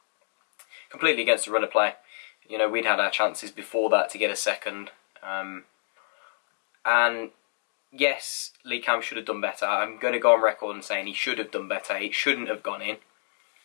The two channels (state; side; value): silent; right; digital silence